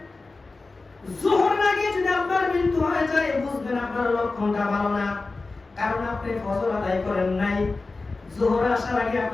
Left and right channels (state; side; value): quieter; right; 3.6 dB